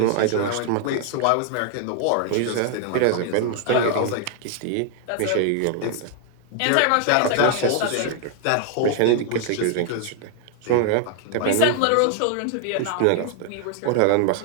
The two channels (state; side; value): different; both; correlation 0.00